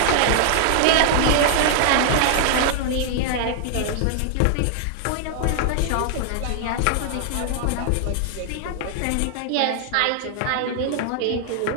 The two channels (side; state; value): both; different; correlation 0.00